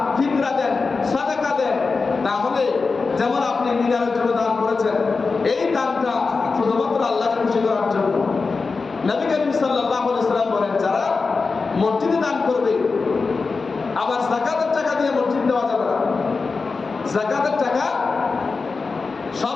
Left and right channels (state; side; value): quieter; right; 4.3 dB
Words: ফিতরা দেন, সাদাকা দেন, তাহলে যেমন আপনি মিনারের জন্য দান করেছেন, এই দানটা শুধুমাত্র আল্লাহকে খুশি করার জন্য। নবী করিম সাল্লাল্লাহু আলাইহি ওয়াসাল্লাম বলেন যারা মসজিদে দান করবে, আবার যাকাতের টাকা দিয়ে মসজিদ দেওয়া যাবে না। যাকাতের টাকা সব